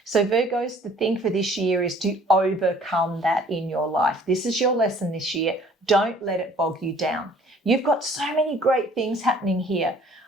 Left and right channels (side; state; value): both; normal; correlation 0.55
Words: So Virgos, the thing for this year is to overcome that in your life. This is your lesson this year. Don't let it bog you down. You've got so many great things happening here.